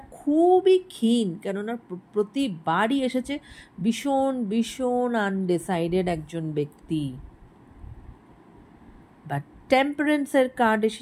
খুবই ক্ষীণ, কেননা প্রতিবারই এসেছে ভীষণ ভীষণ আনডিসাইডেড একজন ব্যক্তি। বা টেম্পারেন্সের কার্ড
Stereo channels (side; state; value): both; identical; correlation 1.00